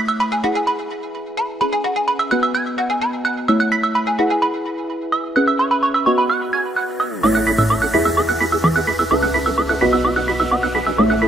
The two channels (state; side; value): normal; both; correlation 0.77